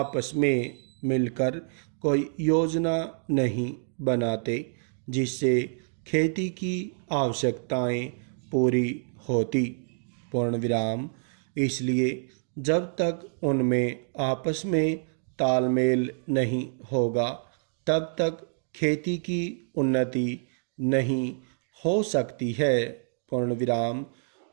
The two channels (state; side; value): silent; left; digital silence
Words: में मिलकर कोई योजना नहीं बनाते जिससे खेती की आवश्यकताएं पूरी होती। पूर्ण विराम। इसलिए जब तक उनमें आपस में तालमेल नहीं होगा तब तक खेती की उन्नति नहीं हो सकती है। पूर्ण विराम।